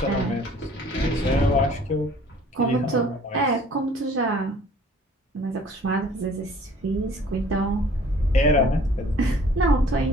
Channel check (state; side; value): normal; both; correlation 0.53